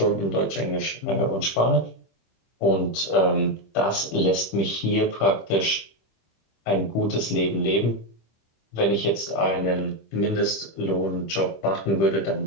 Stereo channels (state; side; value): late; right; 25 ms